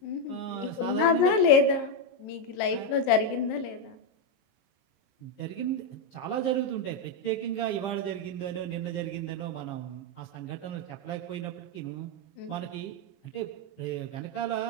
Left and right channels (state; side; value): late; right; 23 ms